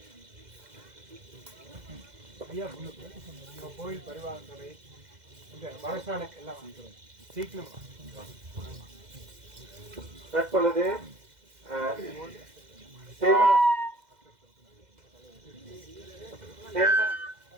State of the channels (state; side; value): late; left; 2.0 ms